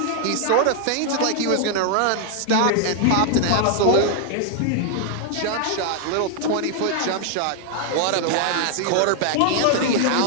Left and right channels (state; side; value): different; both; correlation 0.00